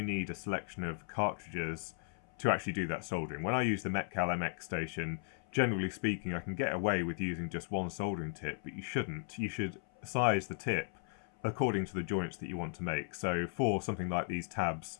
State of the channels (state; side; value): silent; right; 54 dB below the other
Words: need a selection of cartridges to actually do that soldering. When I use the Metcal MX station, generally speaking, I can get away with using just one soldering tip, but you shouldn't. You should size the tip according to the joints that you want to make. So for something like these tabs